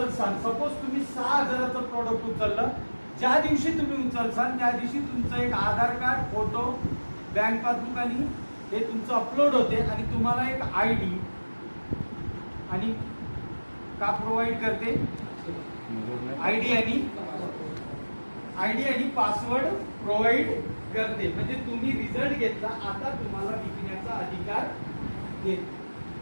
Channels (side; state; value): both; inverted; correlation -1.00